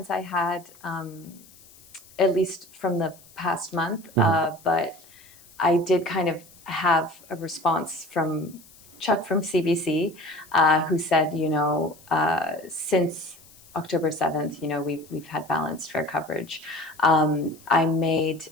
I had, at least from the past month. But I did kind of have a response from Chuck from CBC, who said, since October 7th, we've had balanced, fair coverage. I made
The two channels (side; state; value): left; noise; hiss, 24 dB below the sound